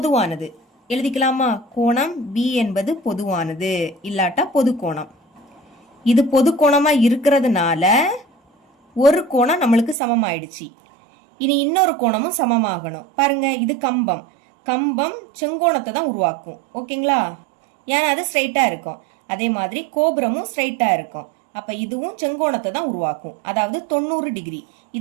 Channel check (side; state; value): left; drops out; at 10.0 s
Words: எழுதிக்கலாமா? கோணம் பி என்பது பொதுவானது, இல்லாட்டா பொது கோணம். இது பொது கோணமா இருக்கிறதுனால ஒரு கோணம் நம்மளுக்கு சமமாயிடுச்சு. இனி இன்னொரு கோணமும் சமமாகணும். பாருங்க, இது கம்பம். கம்பம் செங்கோணத்தை தான் உருவாக்கும். ஓகேங்களா? ஏன்னா அது ஸ்ட்ரைட்டா இருக்கும். அதே மாதிரி கோபுரமும் ஸ்ட்ரைட்டா இருக்கும். அப்ப இதுவும் செங்கோணத்தை தான் உருவாக்கும், அதாவது 90 டிகிரி.